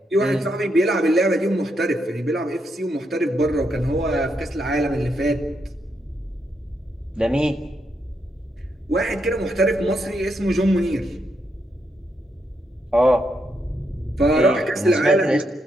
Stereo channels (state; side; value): normal; both; correlation 0.80